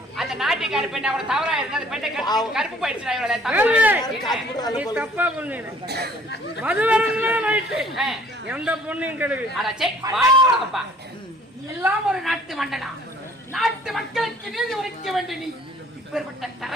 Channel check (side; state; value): both; normal; correlation 0.56